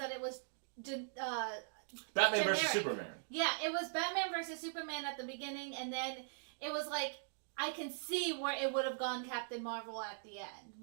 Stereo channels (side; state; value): left; silent; digital silence